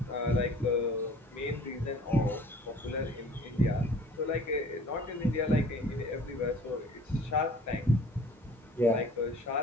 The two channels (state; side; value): normal; both; correlation 0.49